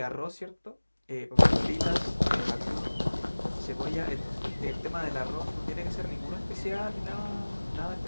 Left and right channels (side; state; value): both; inverted; correlation -1.00